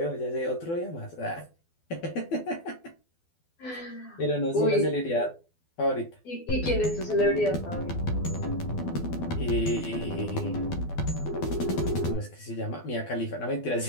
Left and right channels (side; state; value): right; late; 12 ms